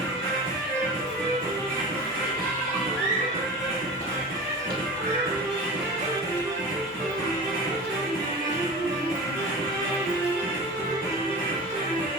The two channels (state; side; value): normal; both; correlation 0.33